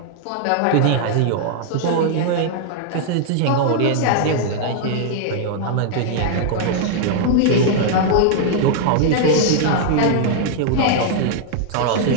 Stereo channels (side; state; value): both; different; correlation -0.01